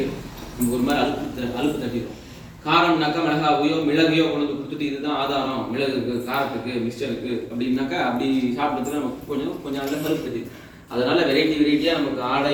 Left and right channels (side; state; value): both; identical; correlation 1.00